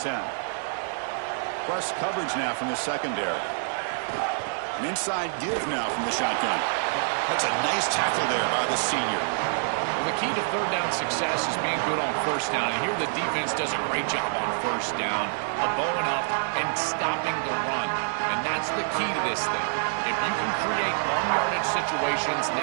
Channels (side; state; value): left; silent; digital silence